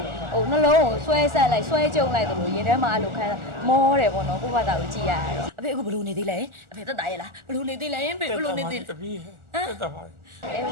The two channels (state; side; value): late; left; 1.4 ms